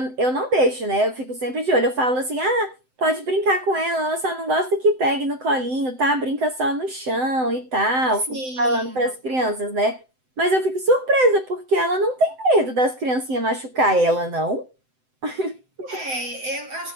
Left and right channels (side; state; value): left; late; 7.8 ms